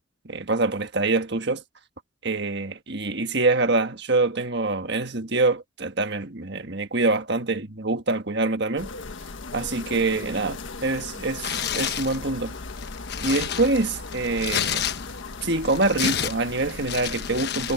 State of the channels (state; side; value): normal; both; correlation -0.01